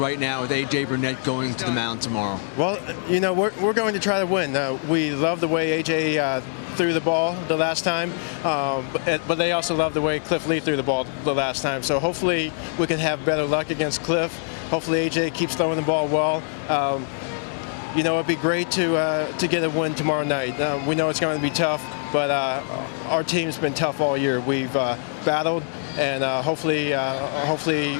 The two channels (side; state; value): right; silent; digital silence